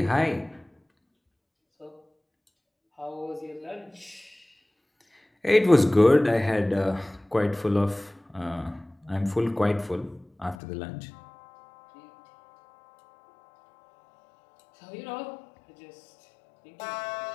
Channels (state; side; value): drops out; right; at 10.6 s